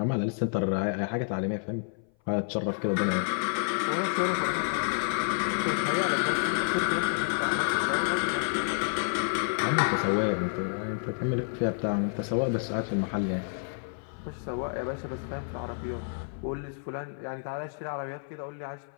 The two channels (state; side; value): silent; right; 57 dB below the other